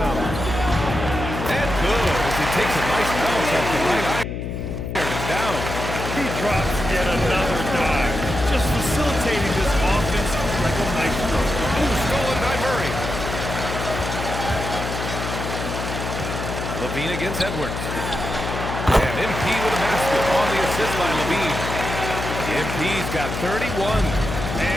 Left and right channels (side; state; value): left; noise; hum, 5 dB below the sound